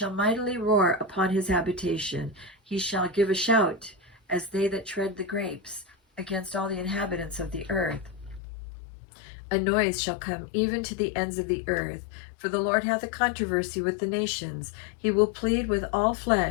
mightily roar upon his habitation. He shall give a shout, as they that tread the grapes, against all the inhabitants of the earth. A noise shall come even to the ends of the earth, for the Lord hath a controversy with the nations. He will plead with all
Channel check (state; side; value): drops out; right; at 8.4 s